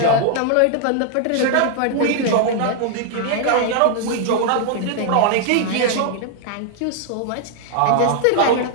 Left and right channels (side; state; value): both; different; correlation 0.00